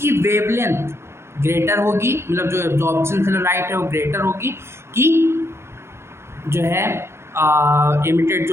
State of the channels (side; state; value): left; late; 0.12 ms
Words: वेवलेंथ ग्रेटर होगी, मतलब जो एब्जॉर्प्शन से लाइट है वो ग्रेटर होगी कि जो है इमिटेड